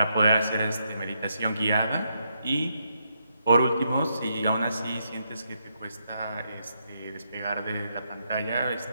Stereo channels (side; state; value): both; inverted; correlation -0.79